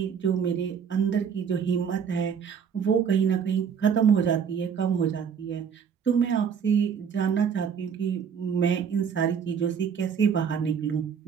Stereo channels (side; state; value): left; quieter; 7.1 dB